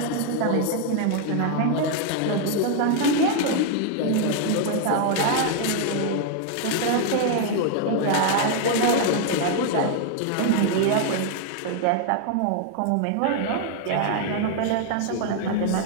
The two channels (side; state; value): both; different; correlation 0.00